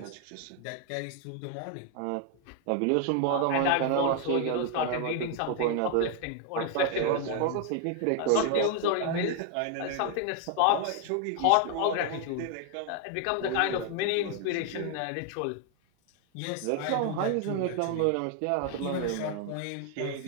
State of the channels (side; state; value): both; different; correlation 0.00